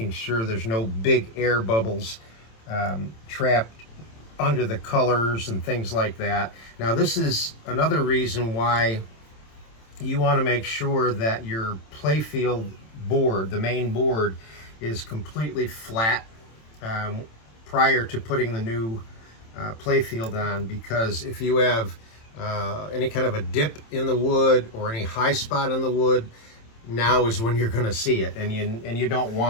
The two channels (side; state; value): right; late; 27 ms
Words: sure there's no big air bubbles trapped under the colors and things like that. Now this is another reason why you want to make sure that your Playfield board, the main board, is completely flat prior to putting the new Playfield on, because if you have any kind of a dip in the wood or any high spot in the wood, now is when you're going to see it, and you don't